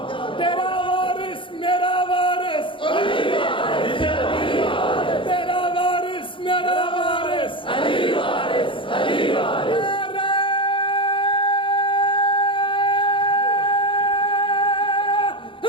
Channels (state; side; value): late; right; 0.25 ms